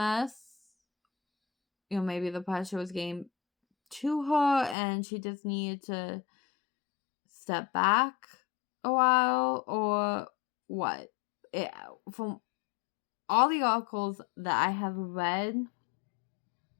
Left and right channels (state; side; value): drops out; right; at 4.8 s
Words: Maybe the pressure was getting to her and she just needed to step back a while, or what. From all the articles that I have read